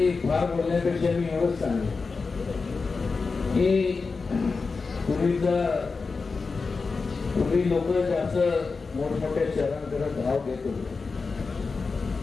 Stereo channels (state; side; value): quieter; right; 4.4 dB